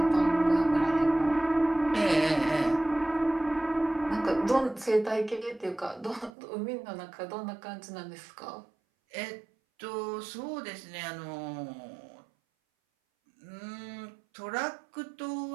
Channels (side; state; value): left; drops out; at 6.3 s